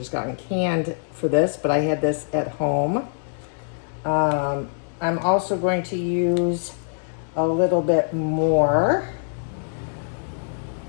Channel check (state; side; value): silent; right; 63 dB below the other